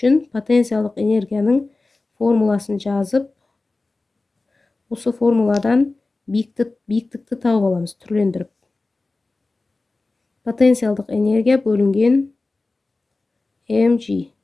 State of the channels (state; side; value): quieter; right; 3.4 dB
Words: потенциалдық энергияның формуласын жазып, осы формуладан биіктікті тауып аламыз, түрлендіріп. Потенциалдық энергия бөлінген mg.